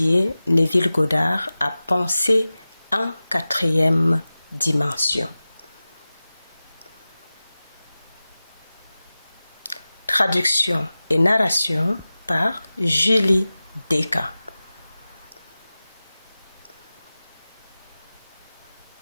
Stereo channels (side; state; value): both; inverted; correlation -0.96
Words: Neville Goddard à penser en quatrième dimension. Traduction et narration par Julie Deka.